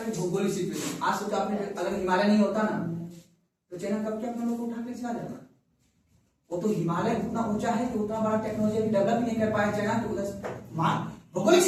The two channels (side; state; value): both; identical; correlation 1.00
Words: है भौगोलिक सिचुएशन। आज सोचो आपने, अगर हिमालय नहीं होता ना तो चाइना कब के अपने लोग को उठा के चला जाता। वो तो हिमालय उतना ऊंचा है कि उतना बड़ा टेक्नोलॉजी अभी डेवलप नहीं कर पाया चाइना, तो उधर भौगोलिक